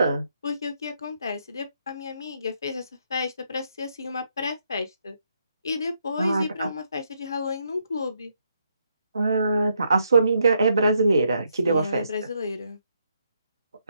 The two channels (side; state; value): both; inverted; correlation -0.76